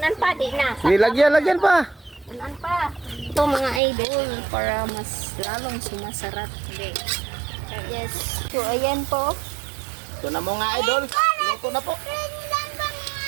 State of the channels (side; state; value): left; drops out; at 3.8 s